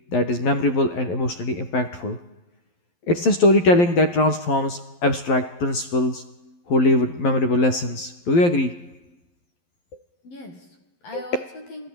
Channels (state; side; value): late; right; 11 ms